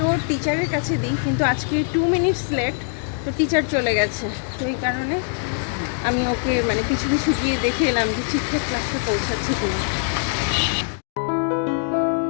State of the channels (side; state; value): right; silent; 64 dB below the other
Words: ওর টিচারের কাছে দিই, কিন্তু আজকে 2 মিনিটস লেট, তো টিচার চলে গেছে। তো এই কারণে আমি ওকে মানে কিছু কিছু গিয়ে দেখে এলাম যে ঠিকঠাক ক্লাসে পৌঁছাচ্ছে কিনা।